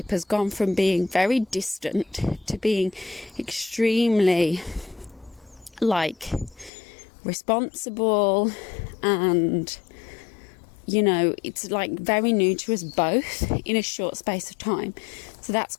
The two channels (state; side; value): drops out; right; at 6.7 s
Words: has gone from being very distant to being extremely, like, responsible, and, you know, it's like very new to us both in a short space of time. So that's